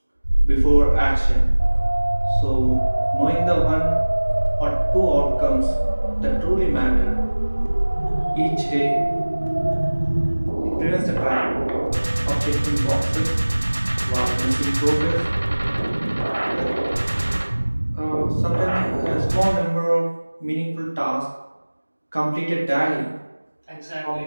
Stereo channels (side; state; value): both; inverted; correlation -1.00